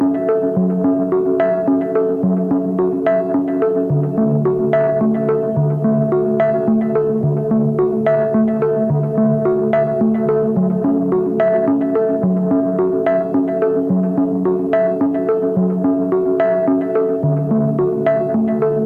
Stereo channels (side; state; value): both; identical; correlation 1.00